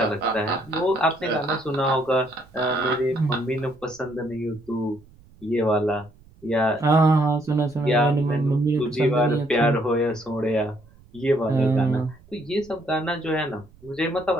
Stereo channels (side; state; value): right; noise; rumble, 26 dB below the sound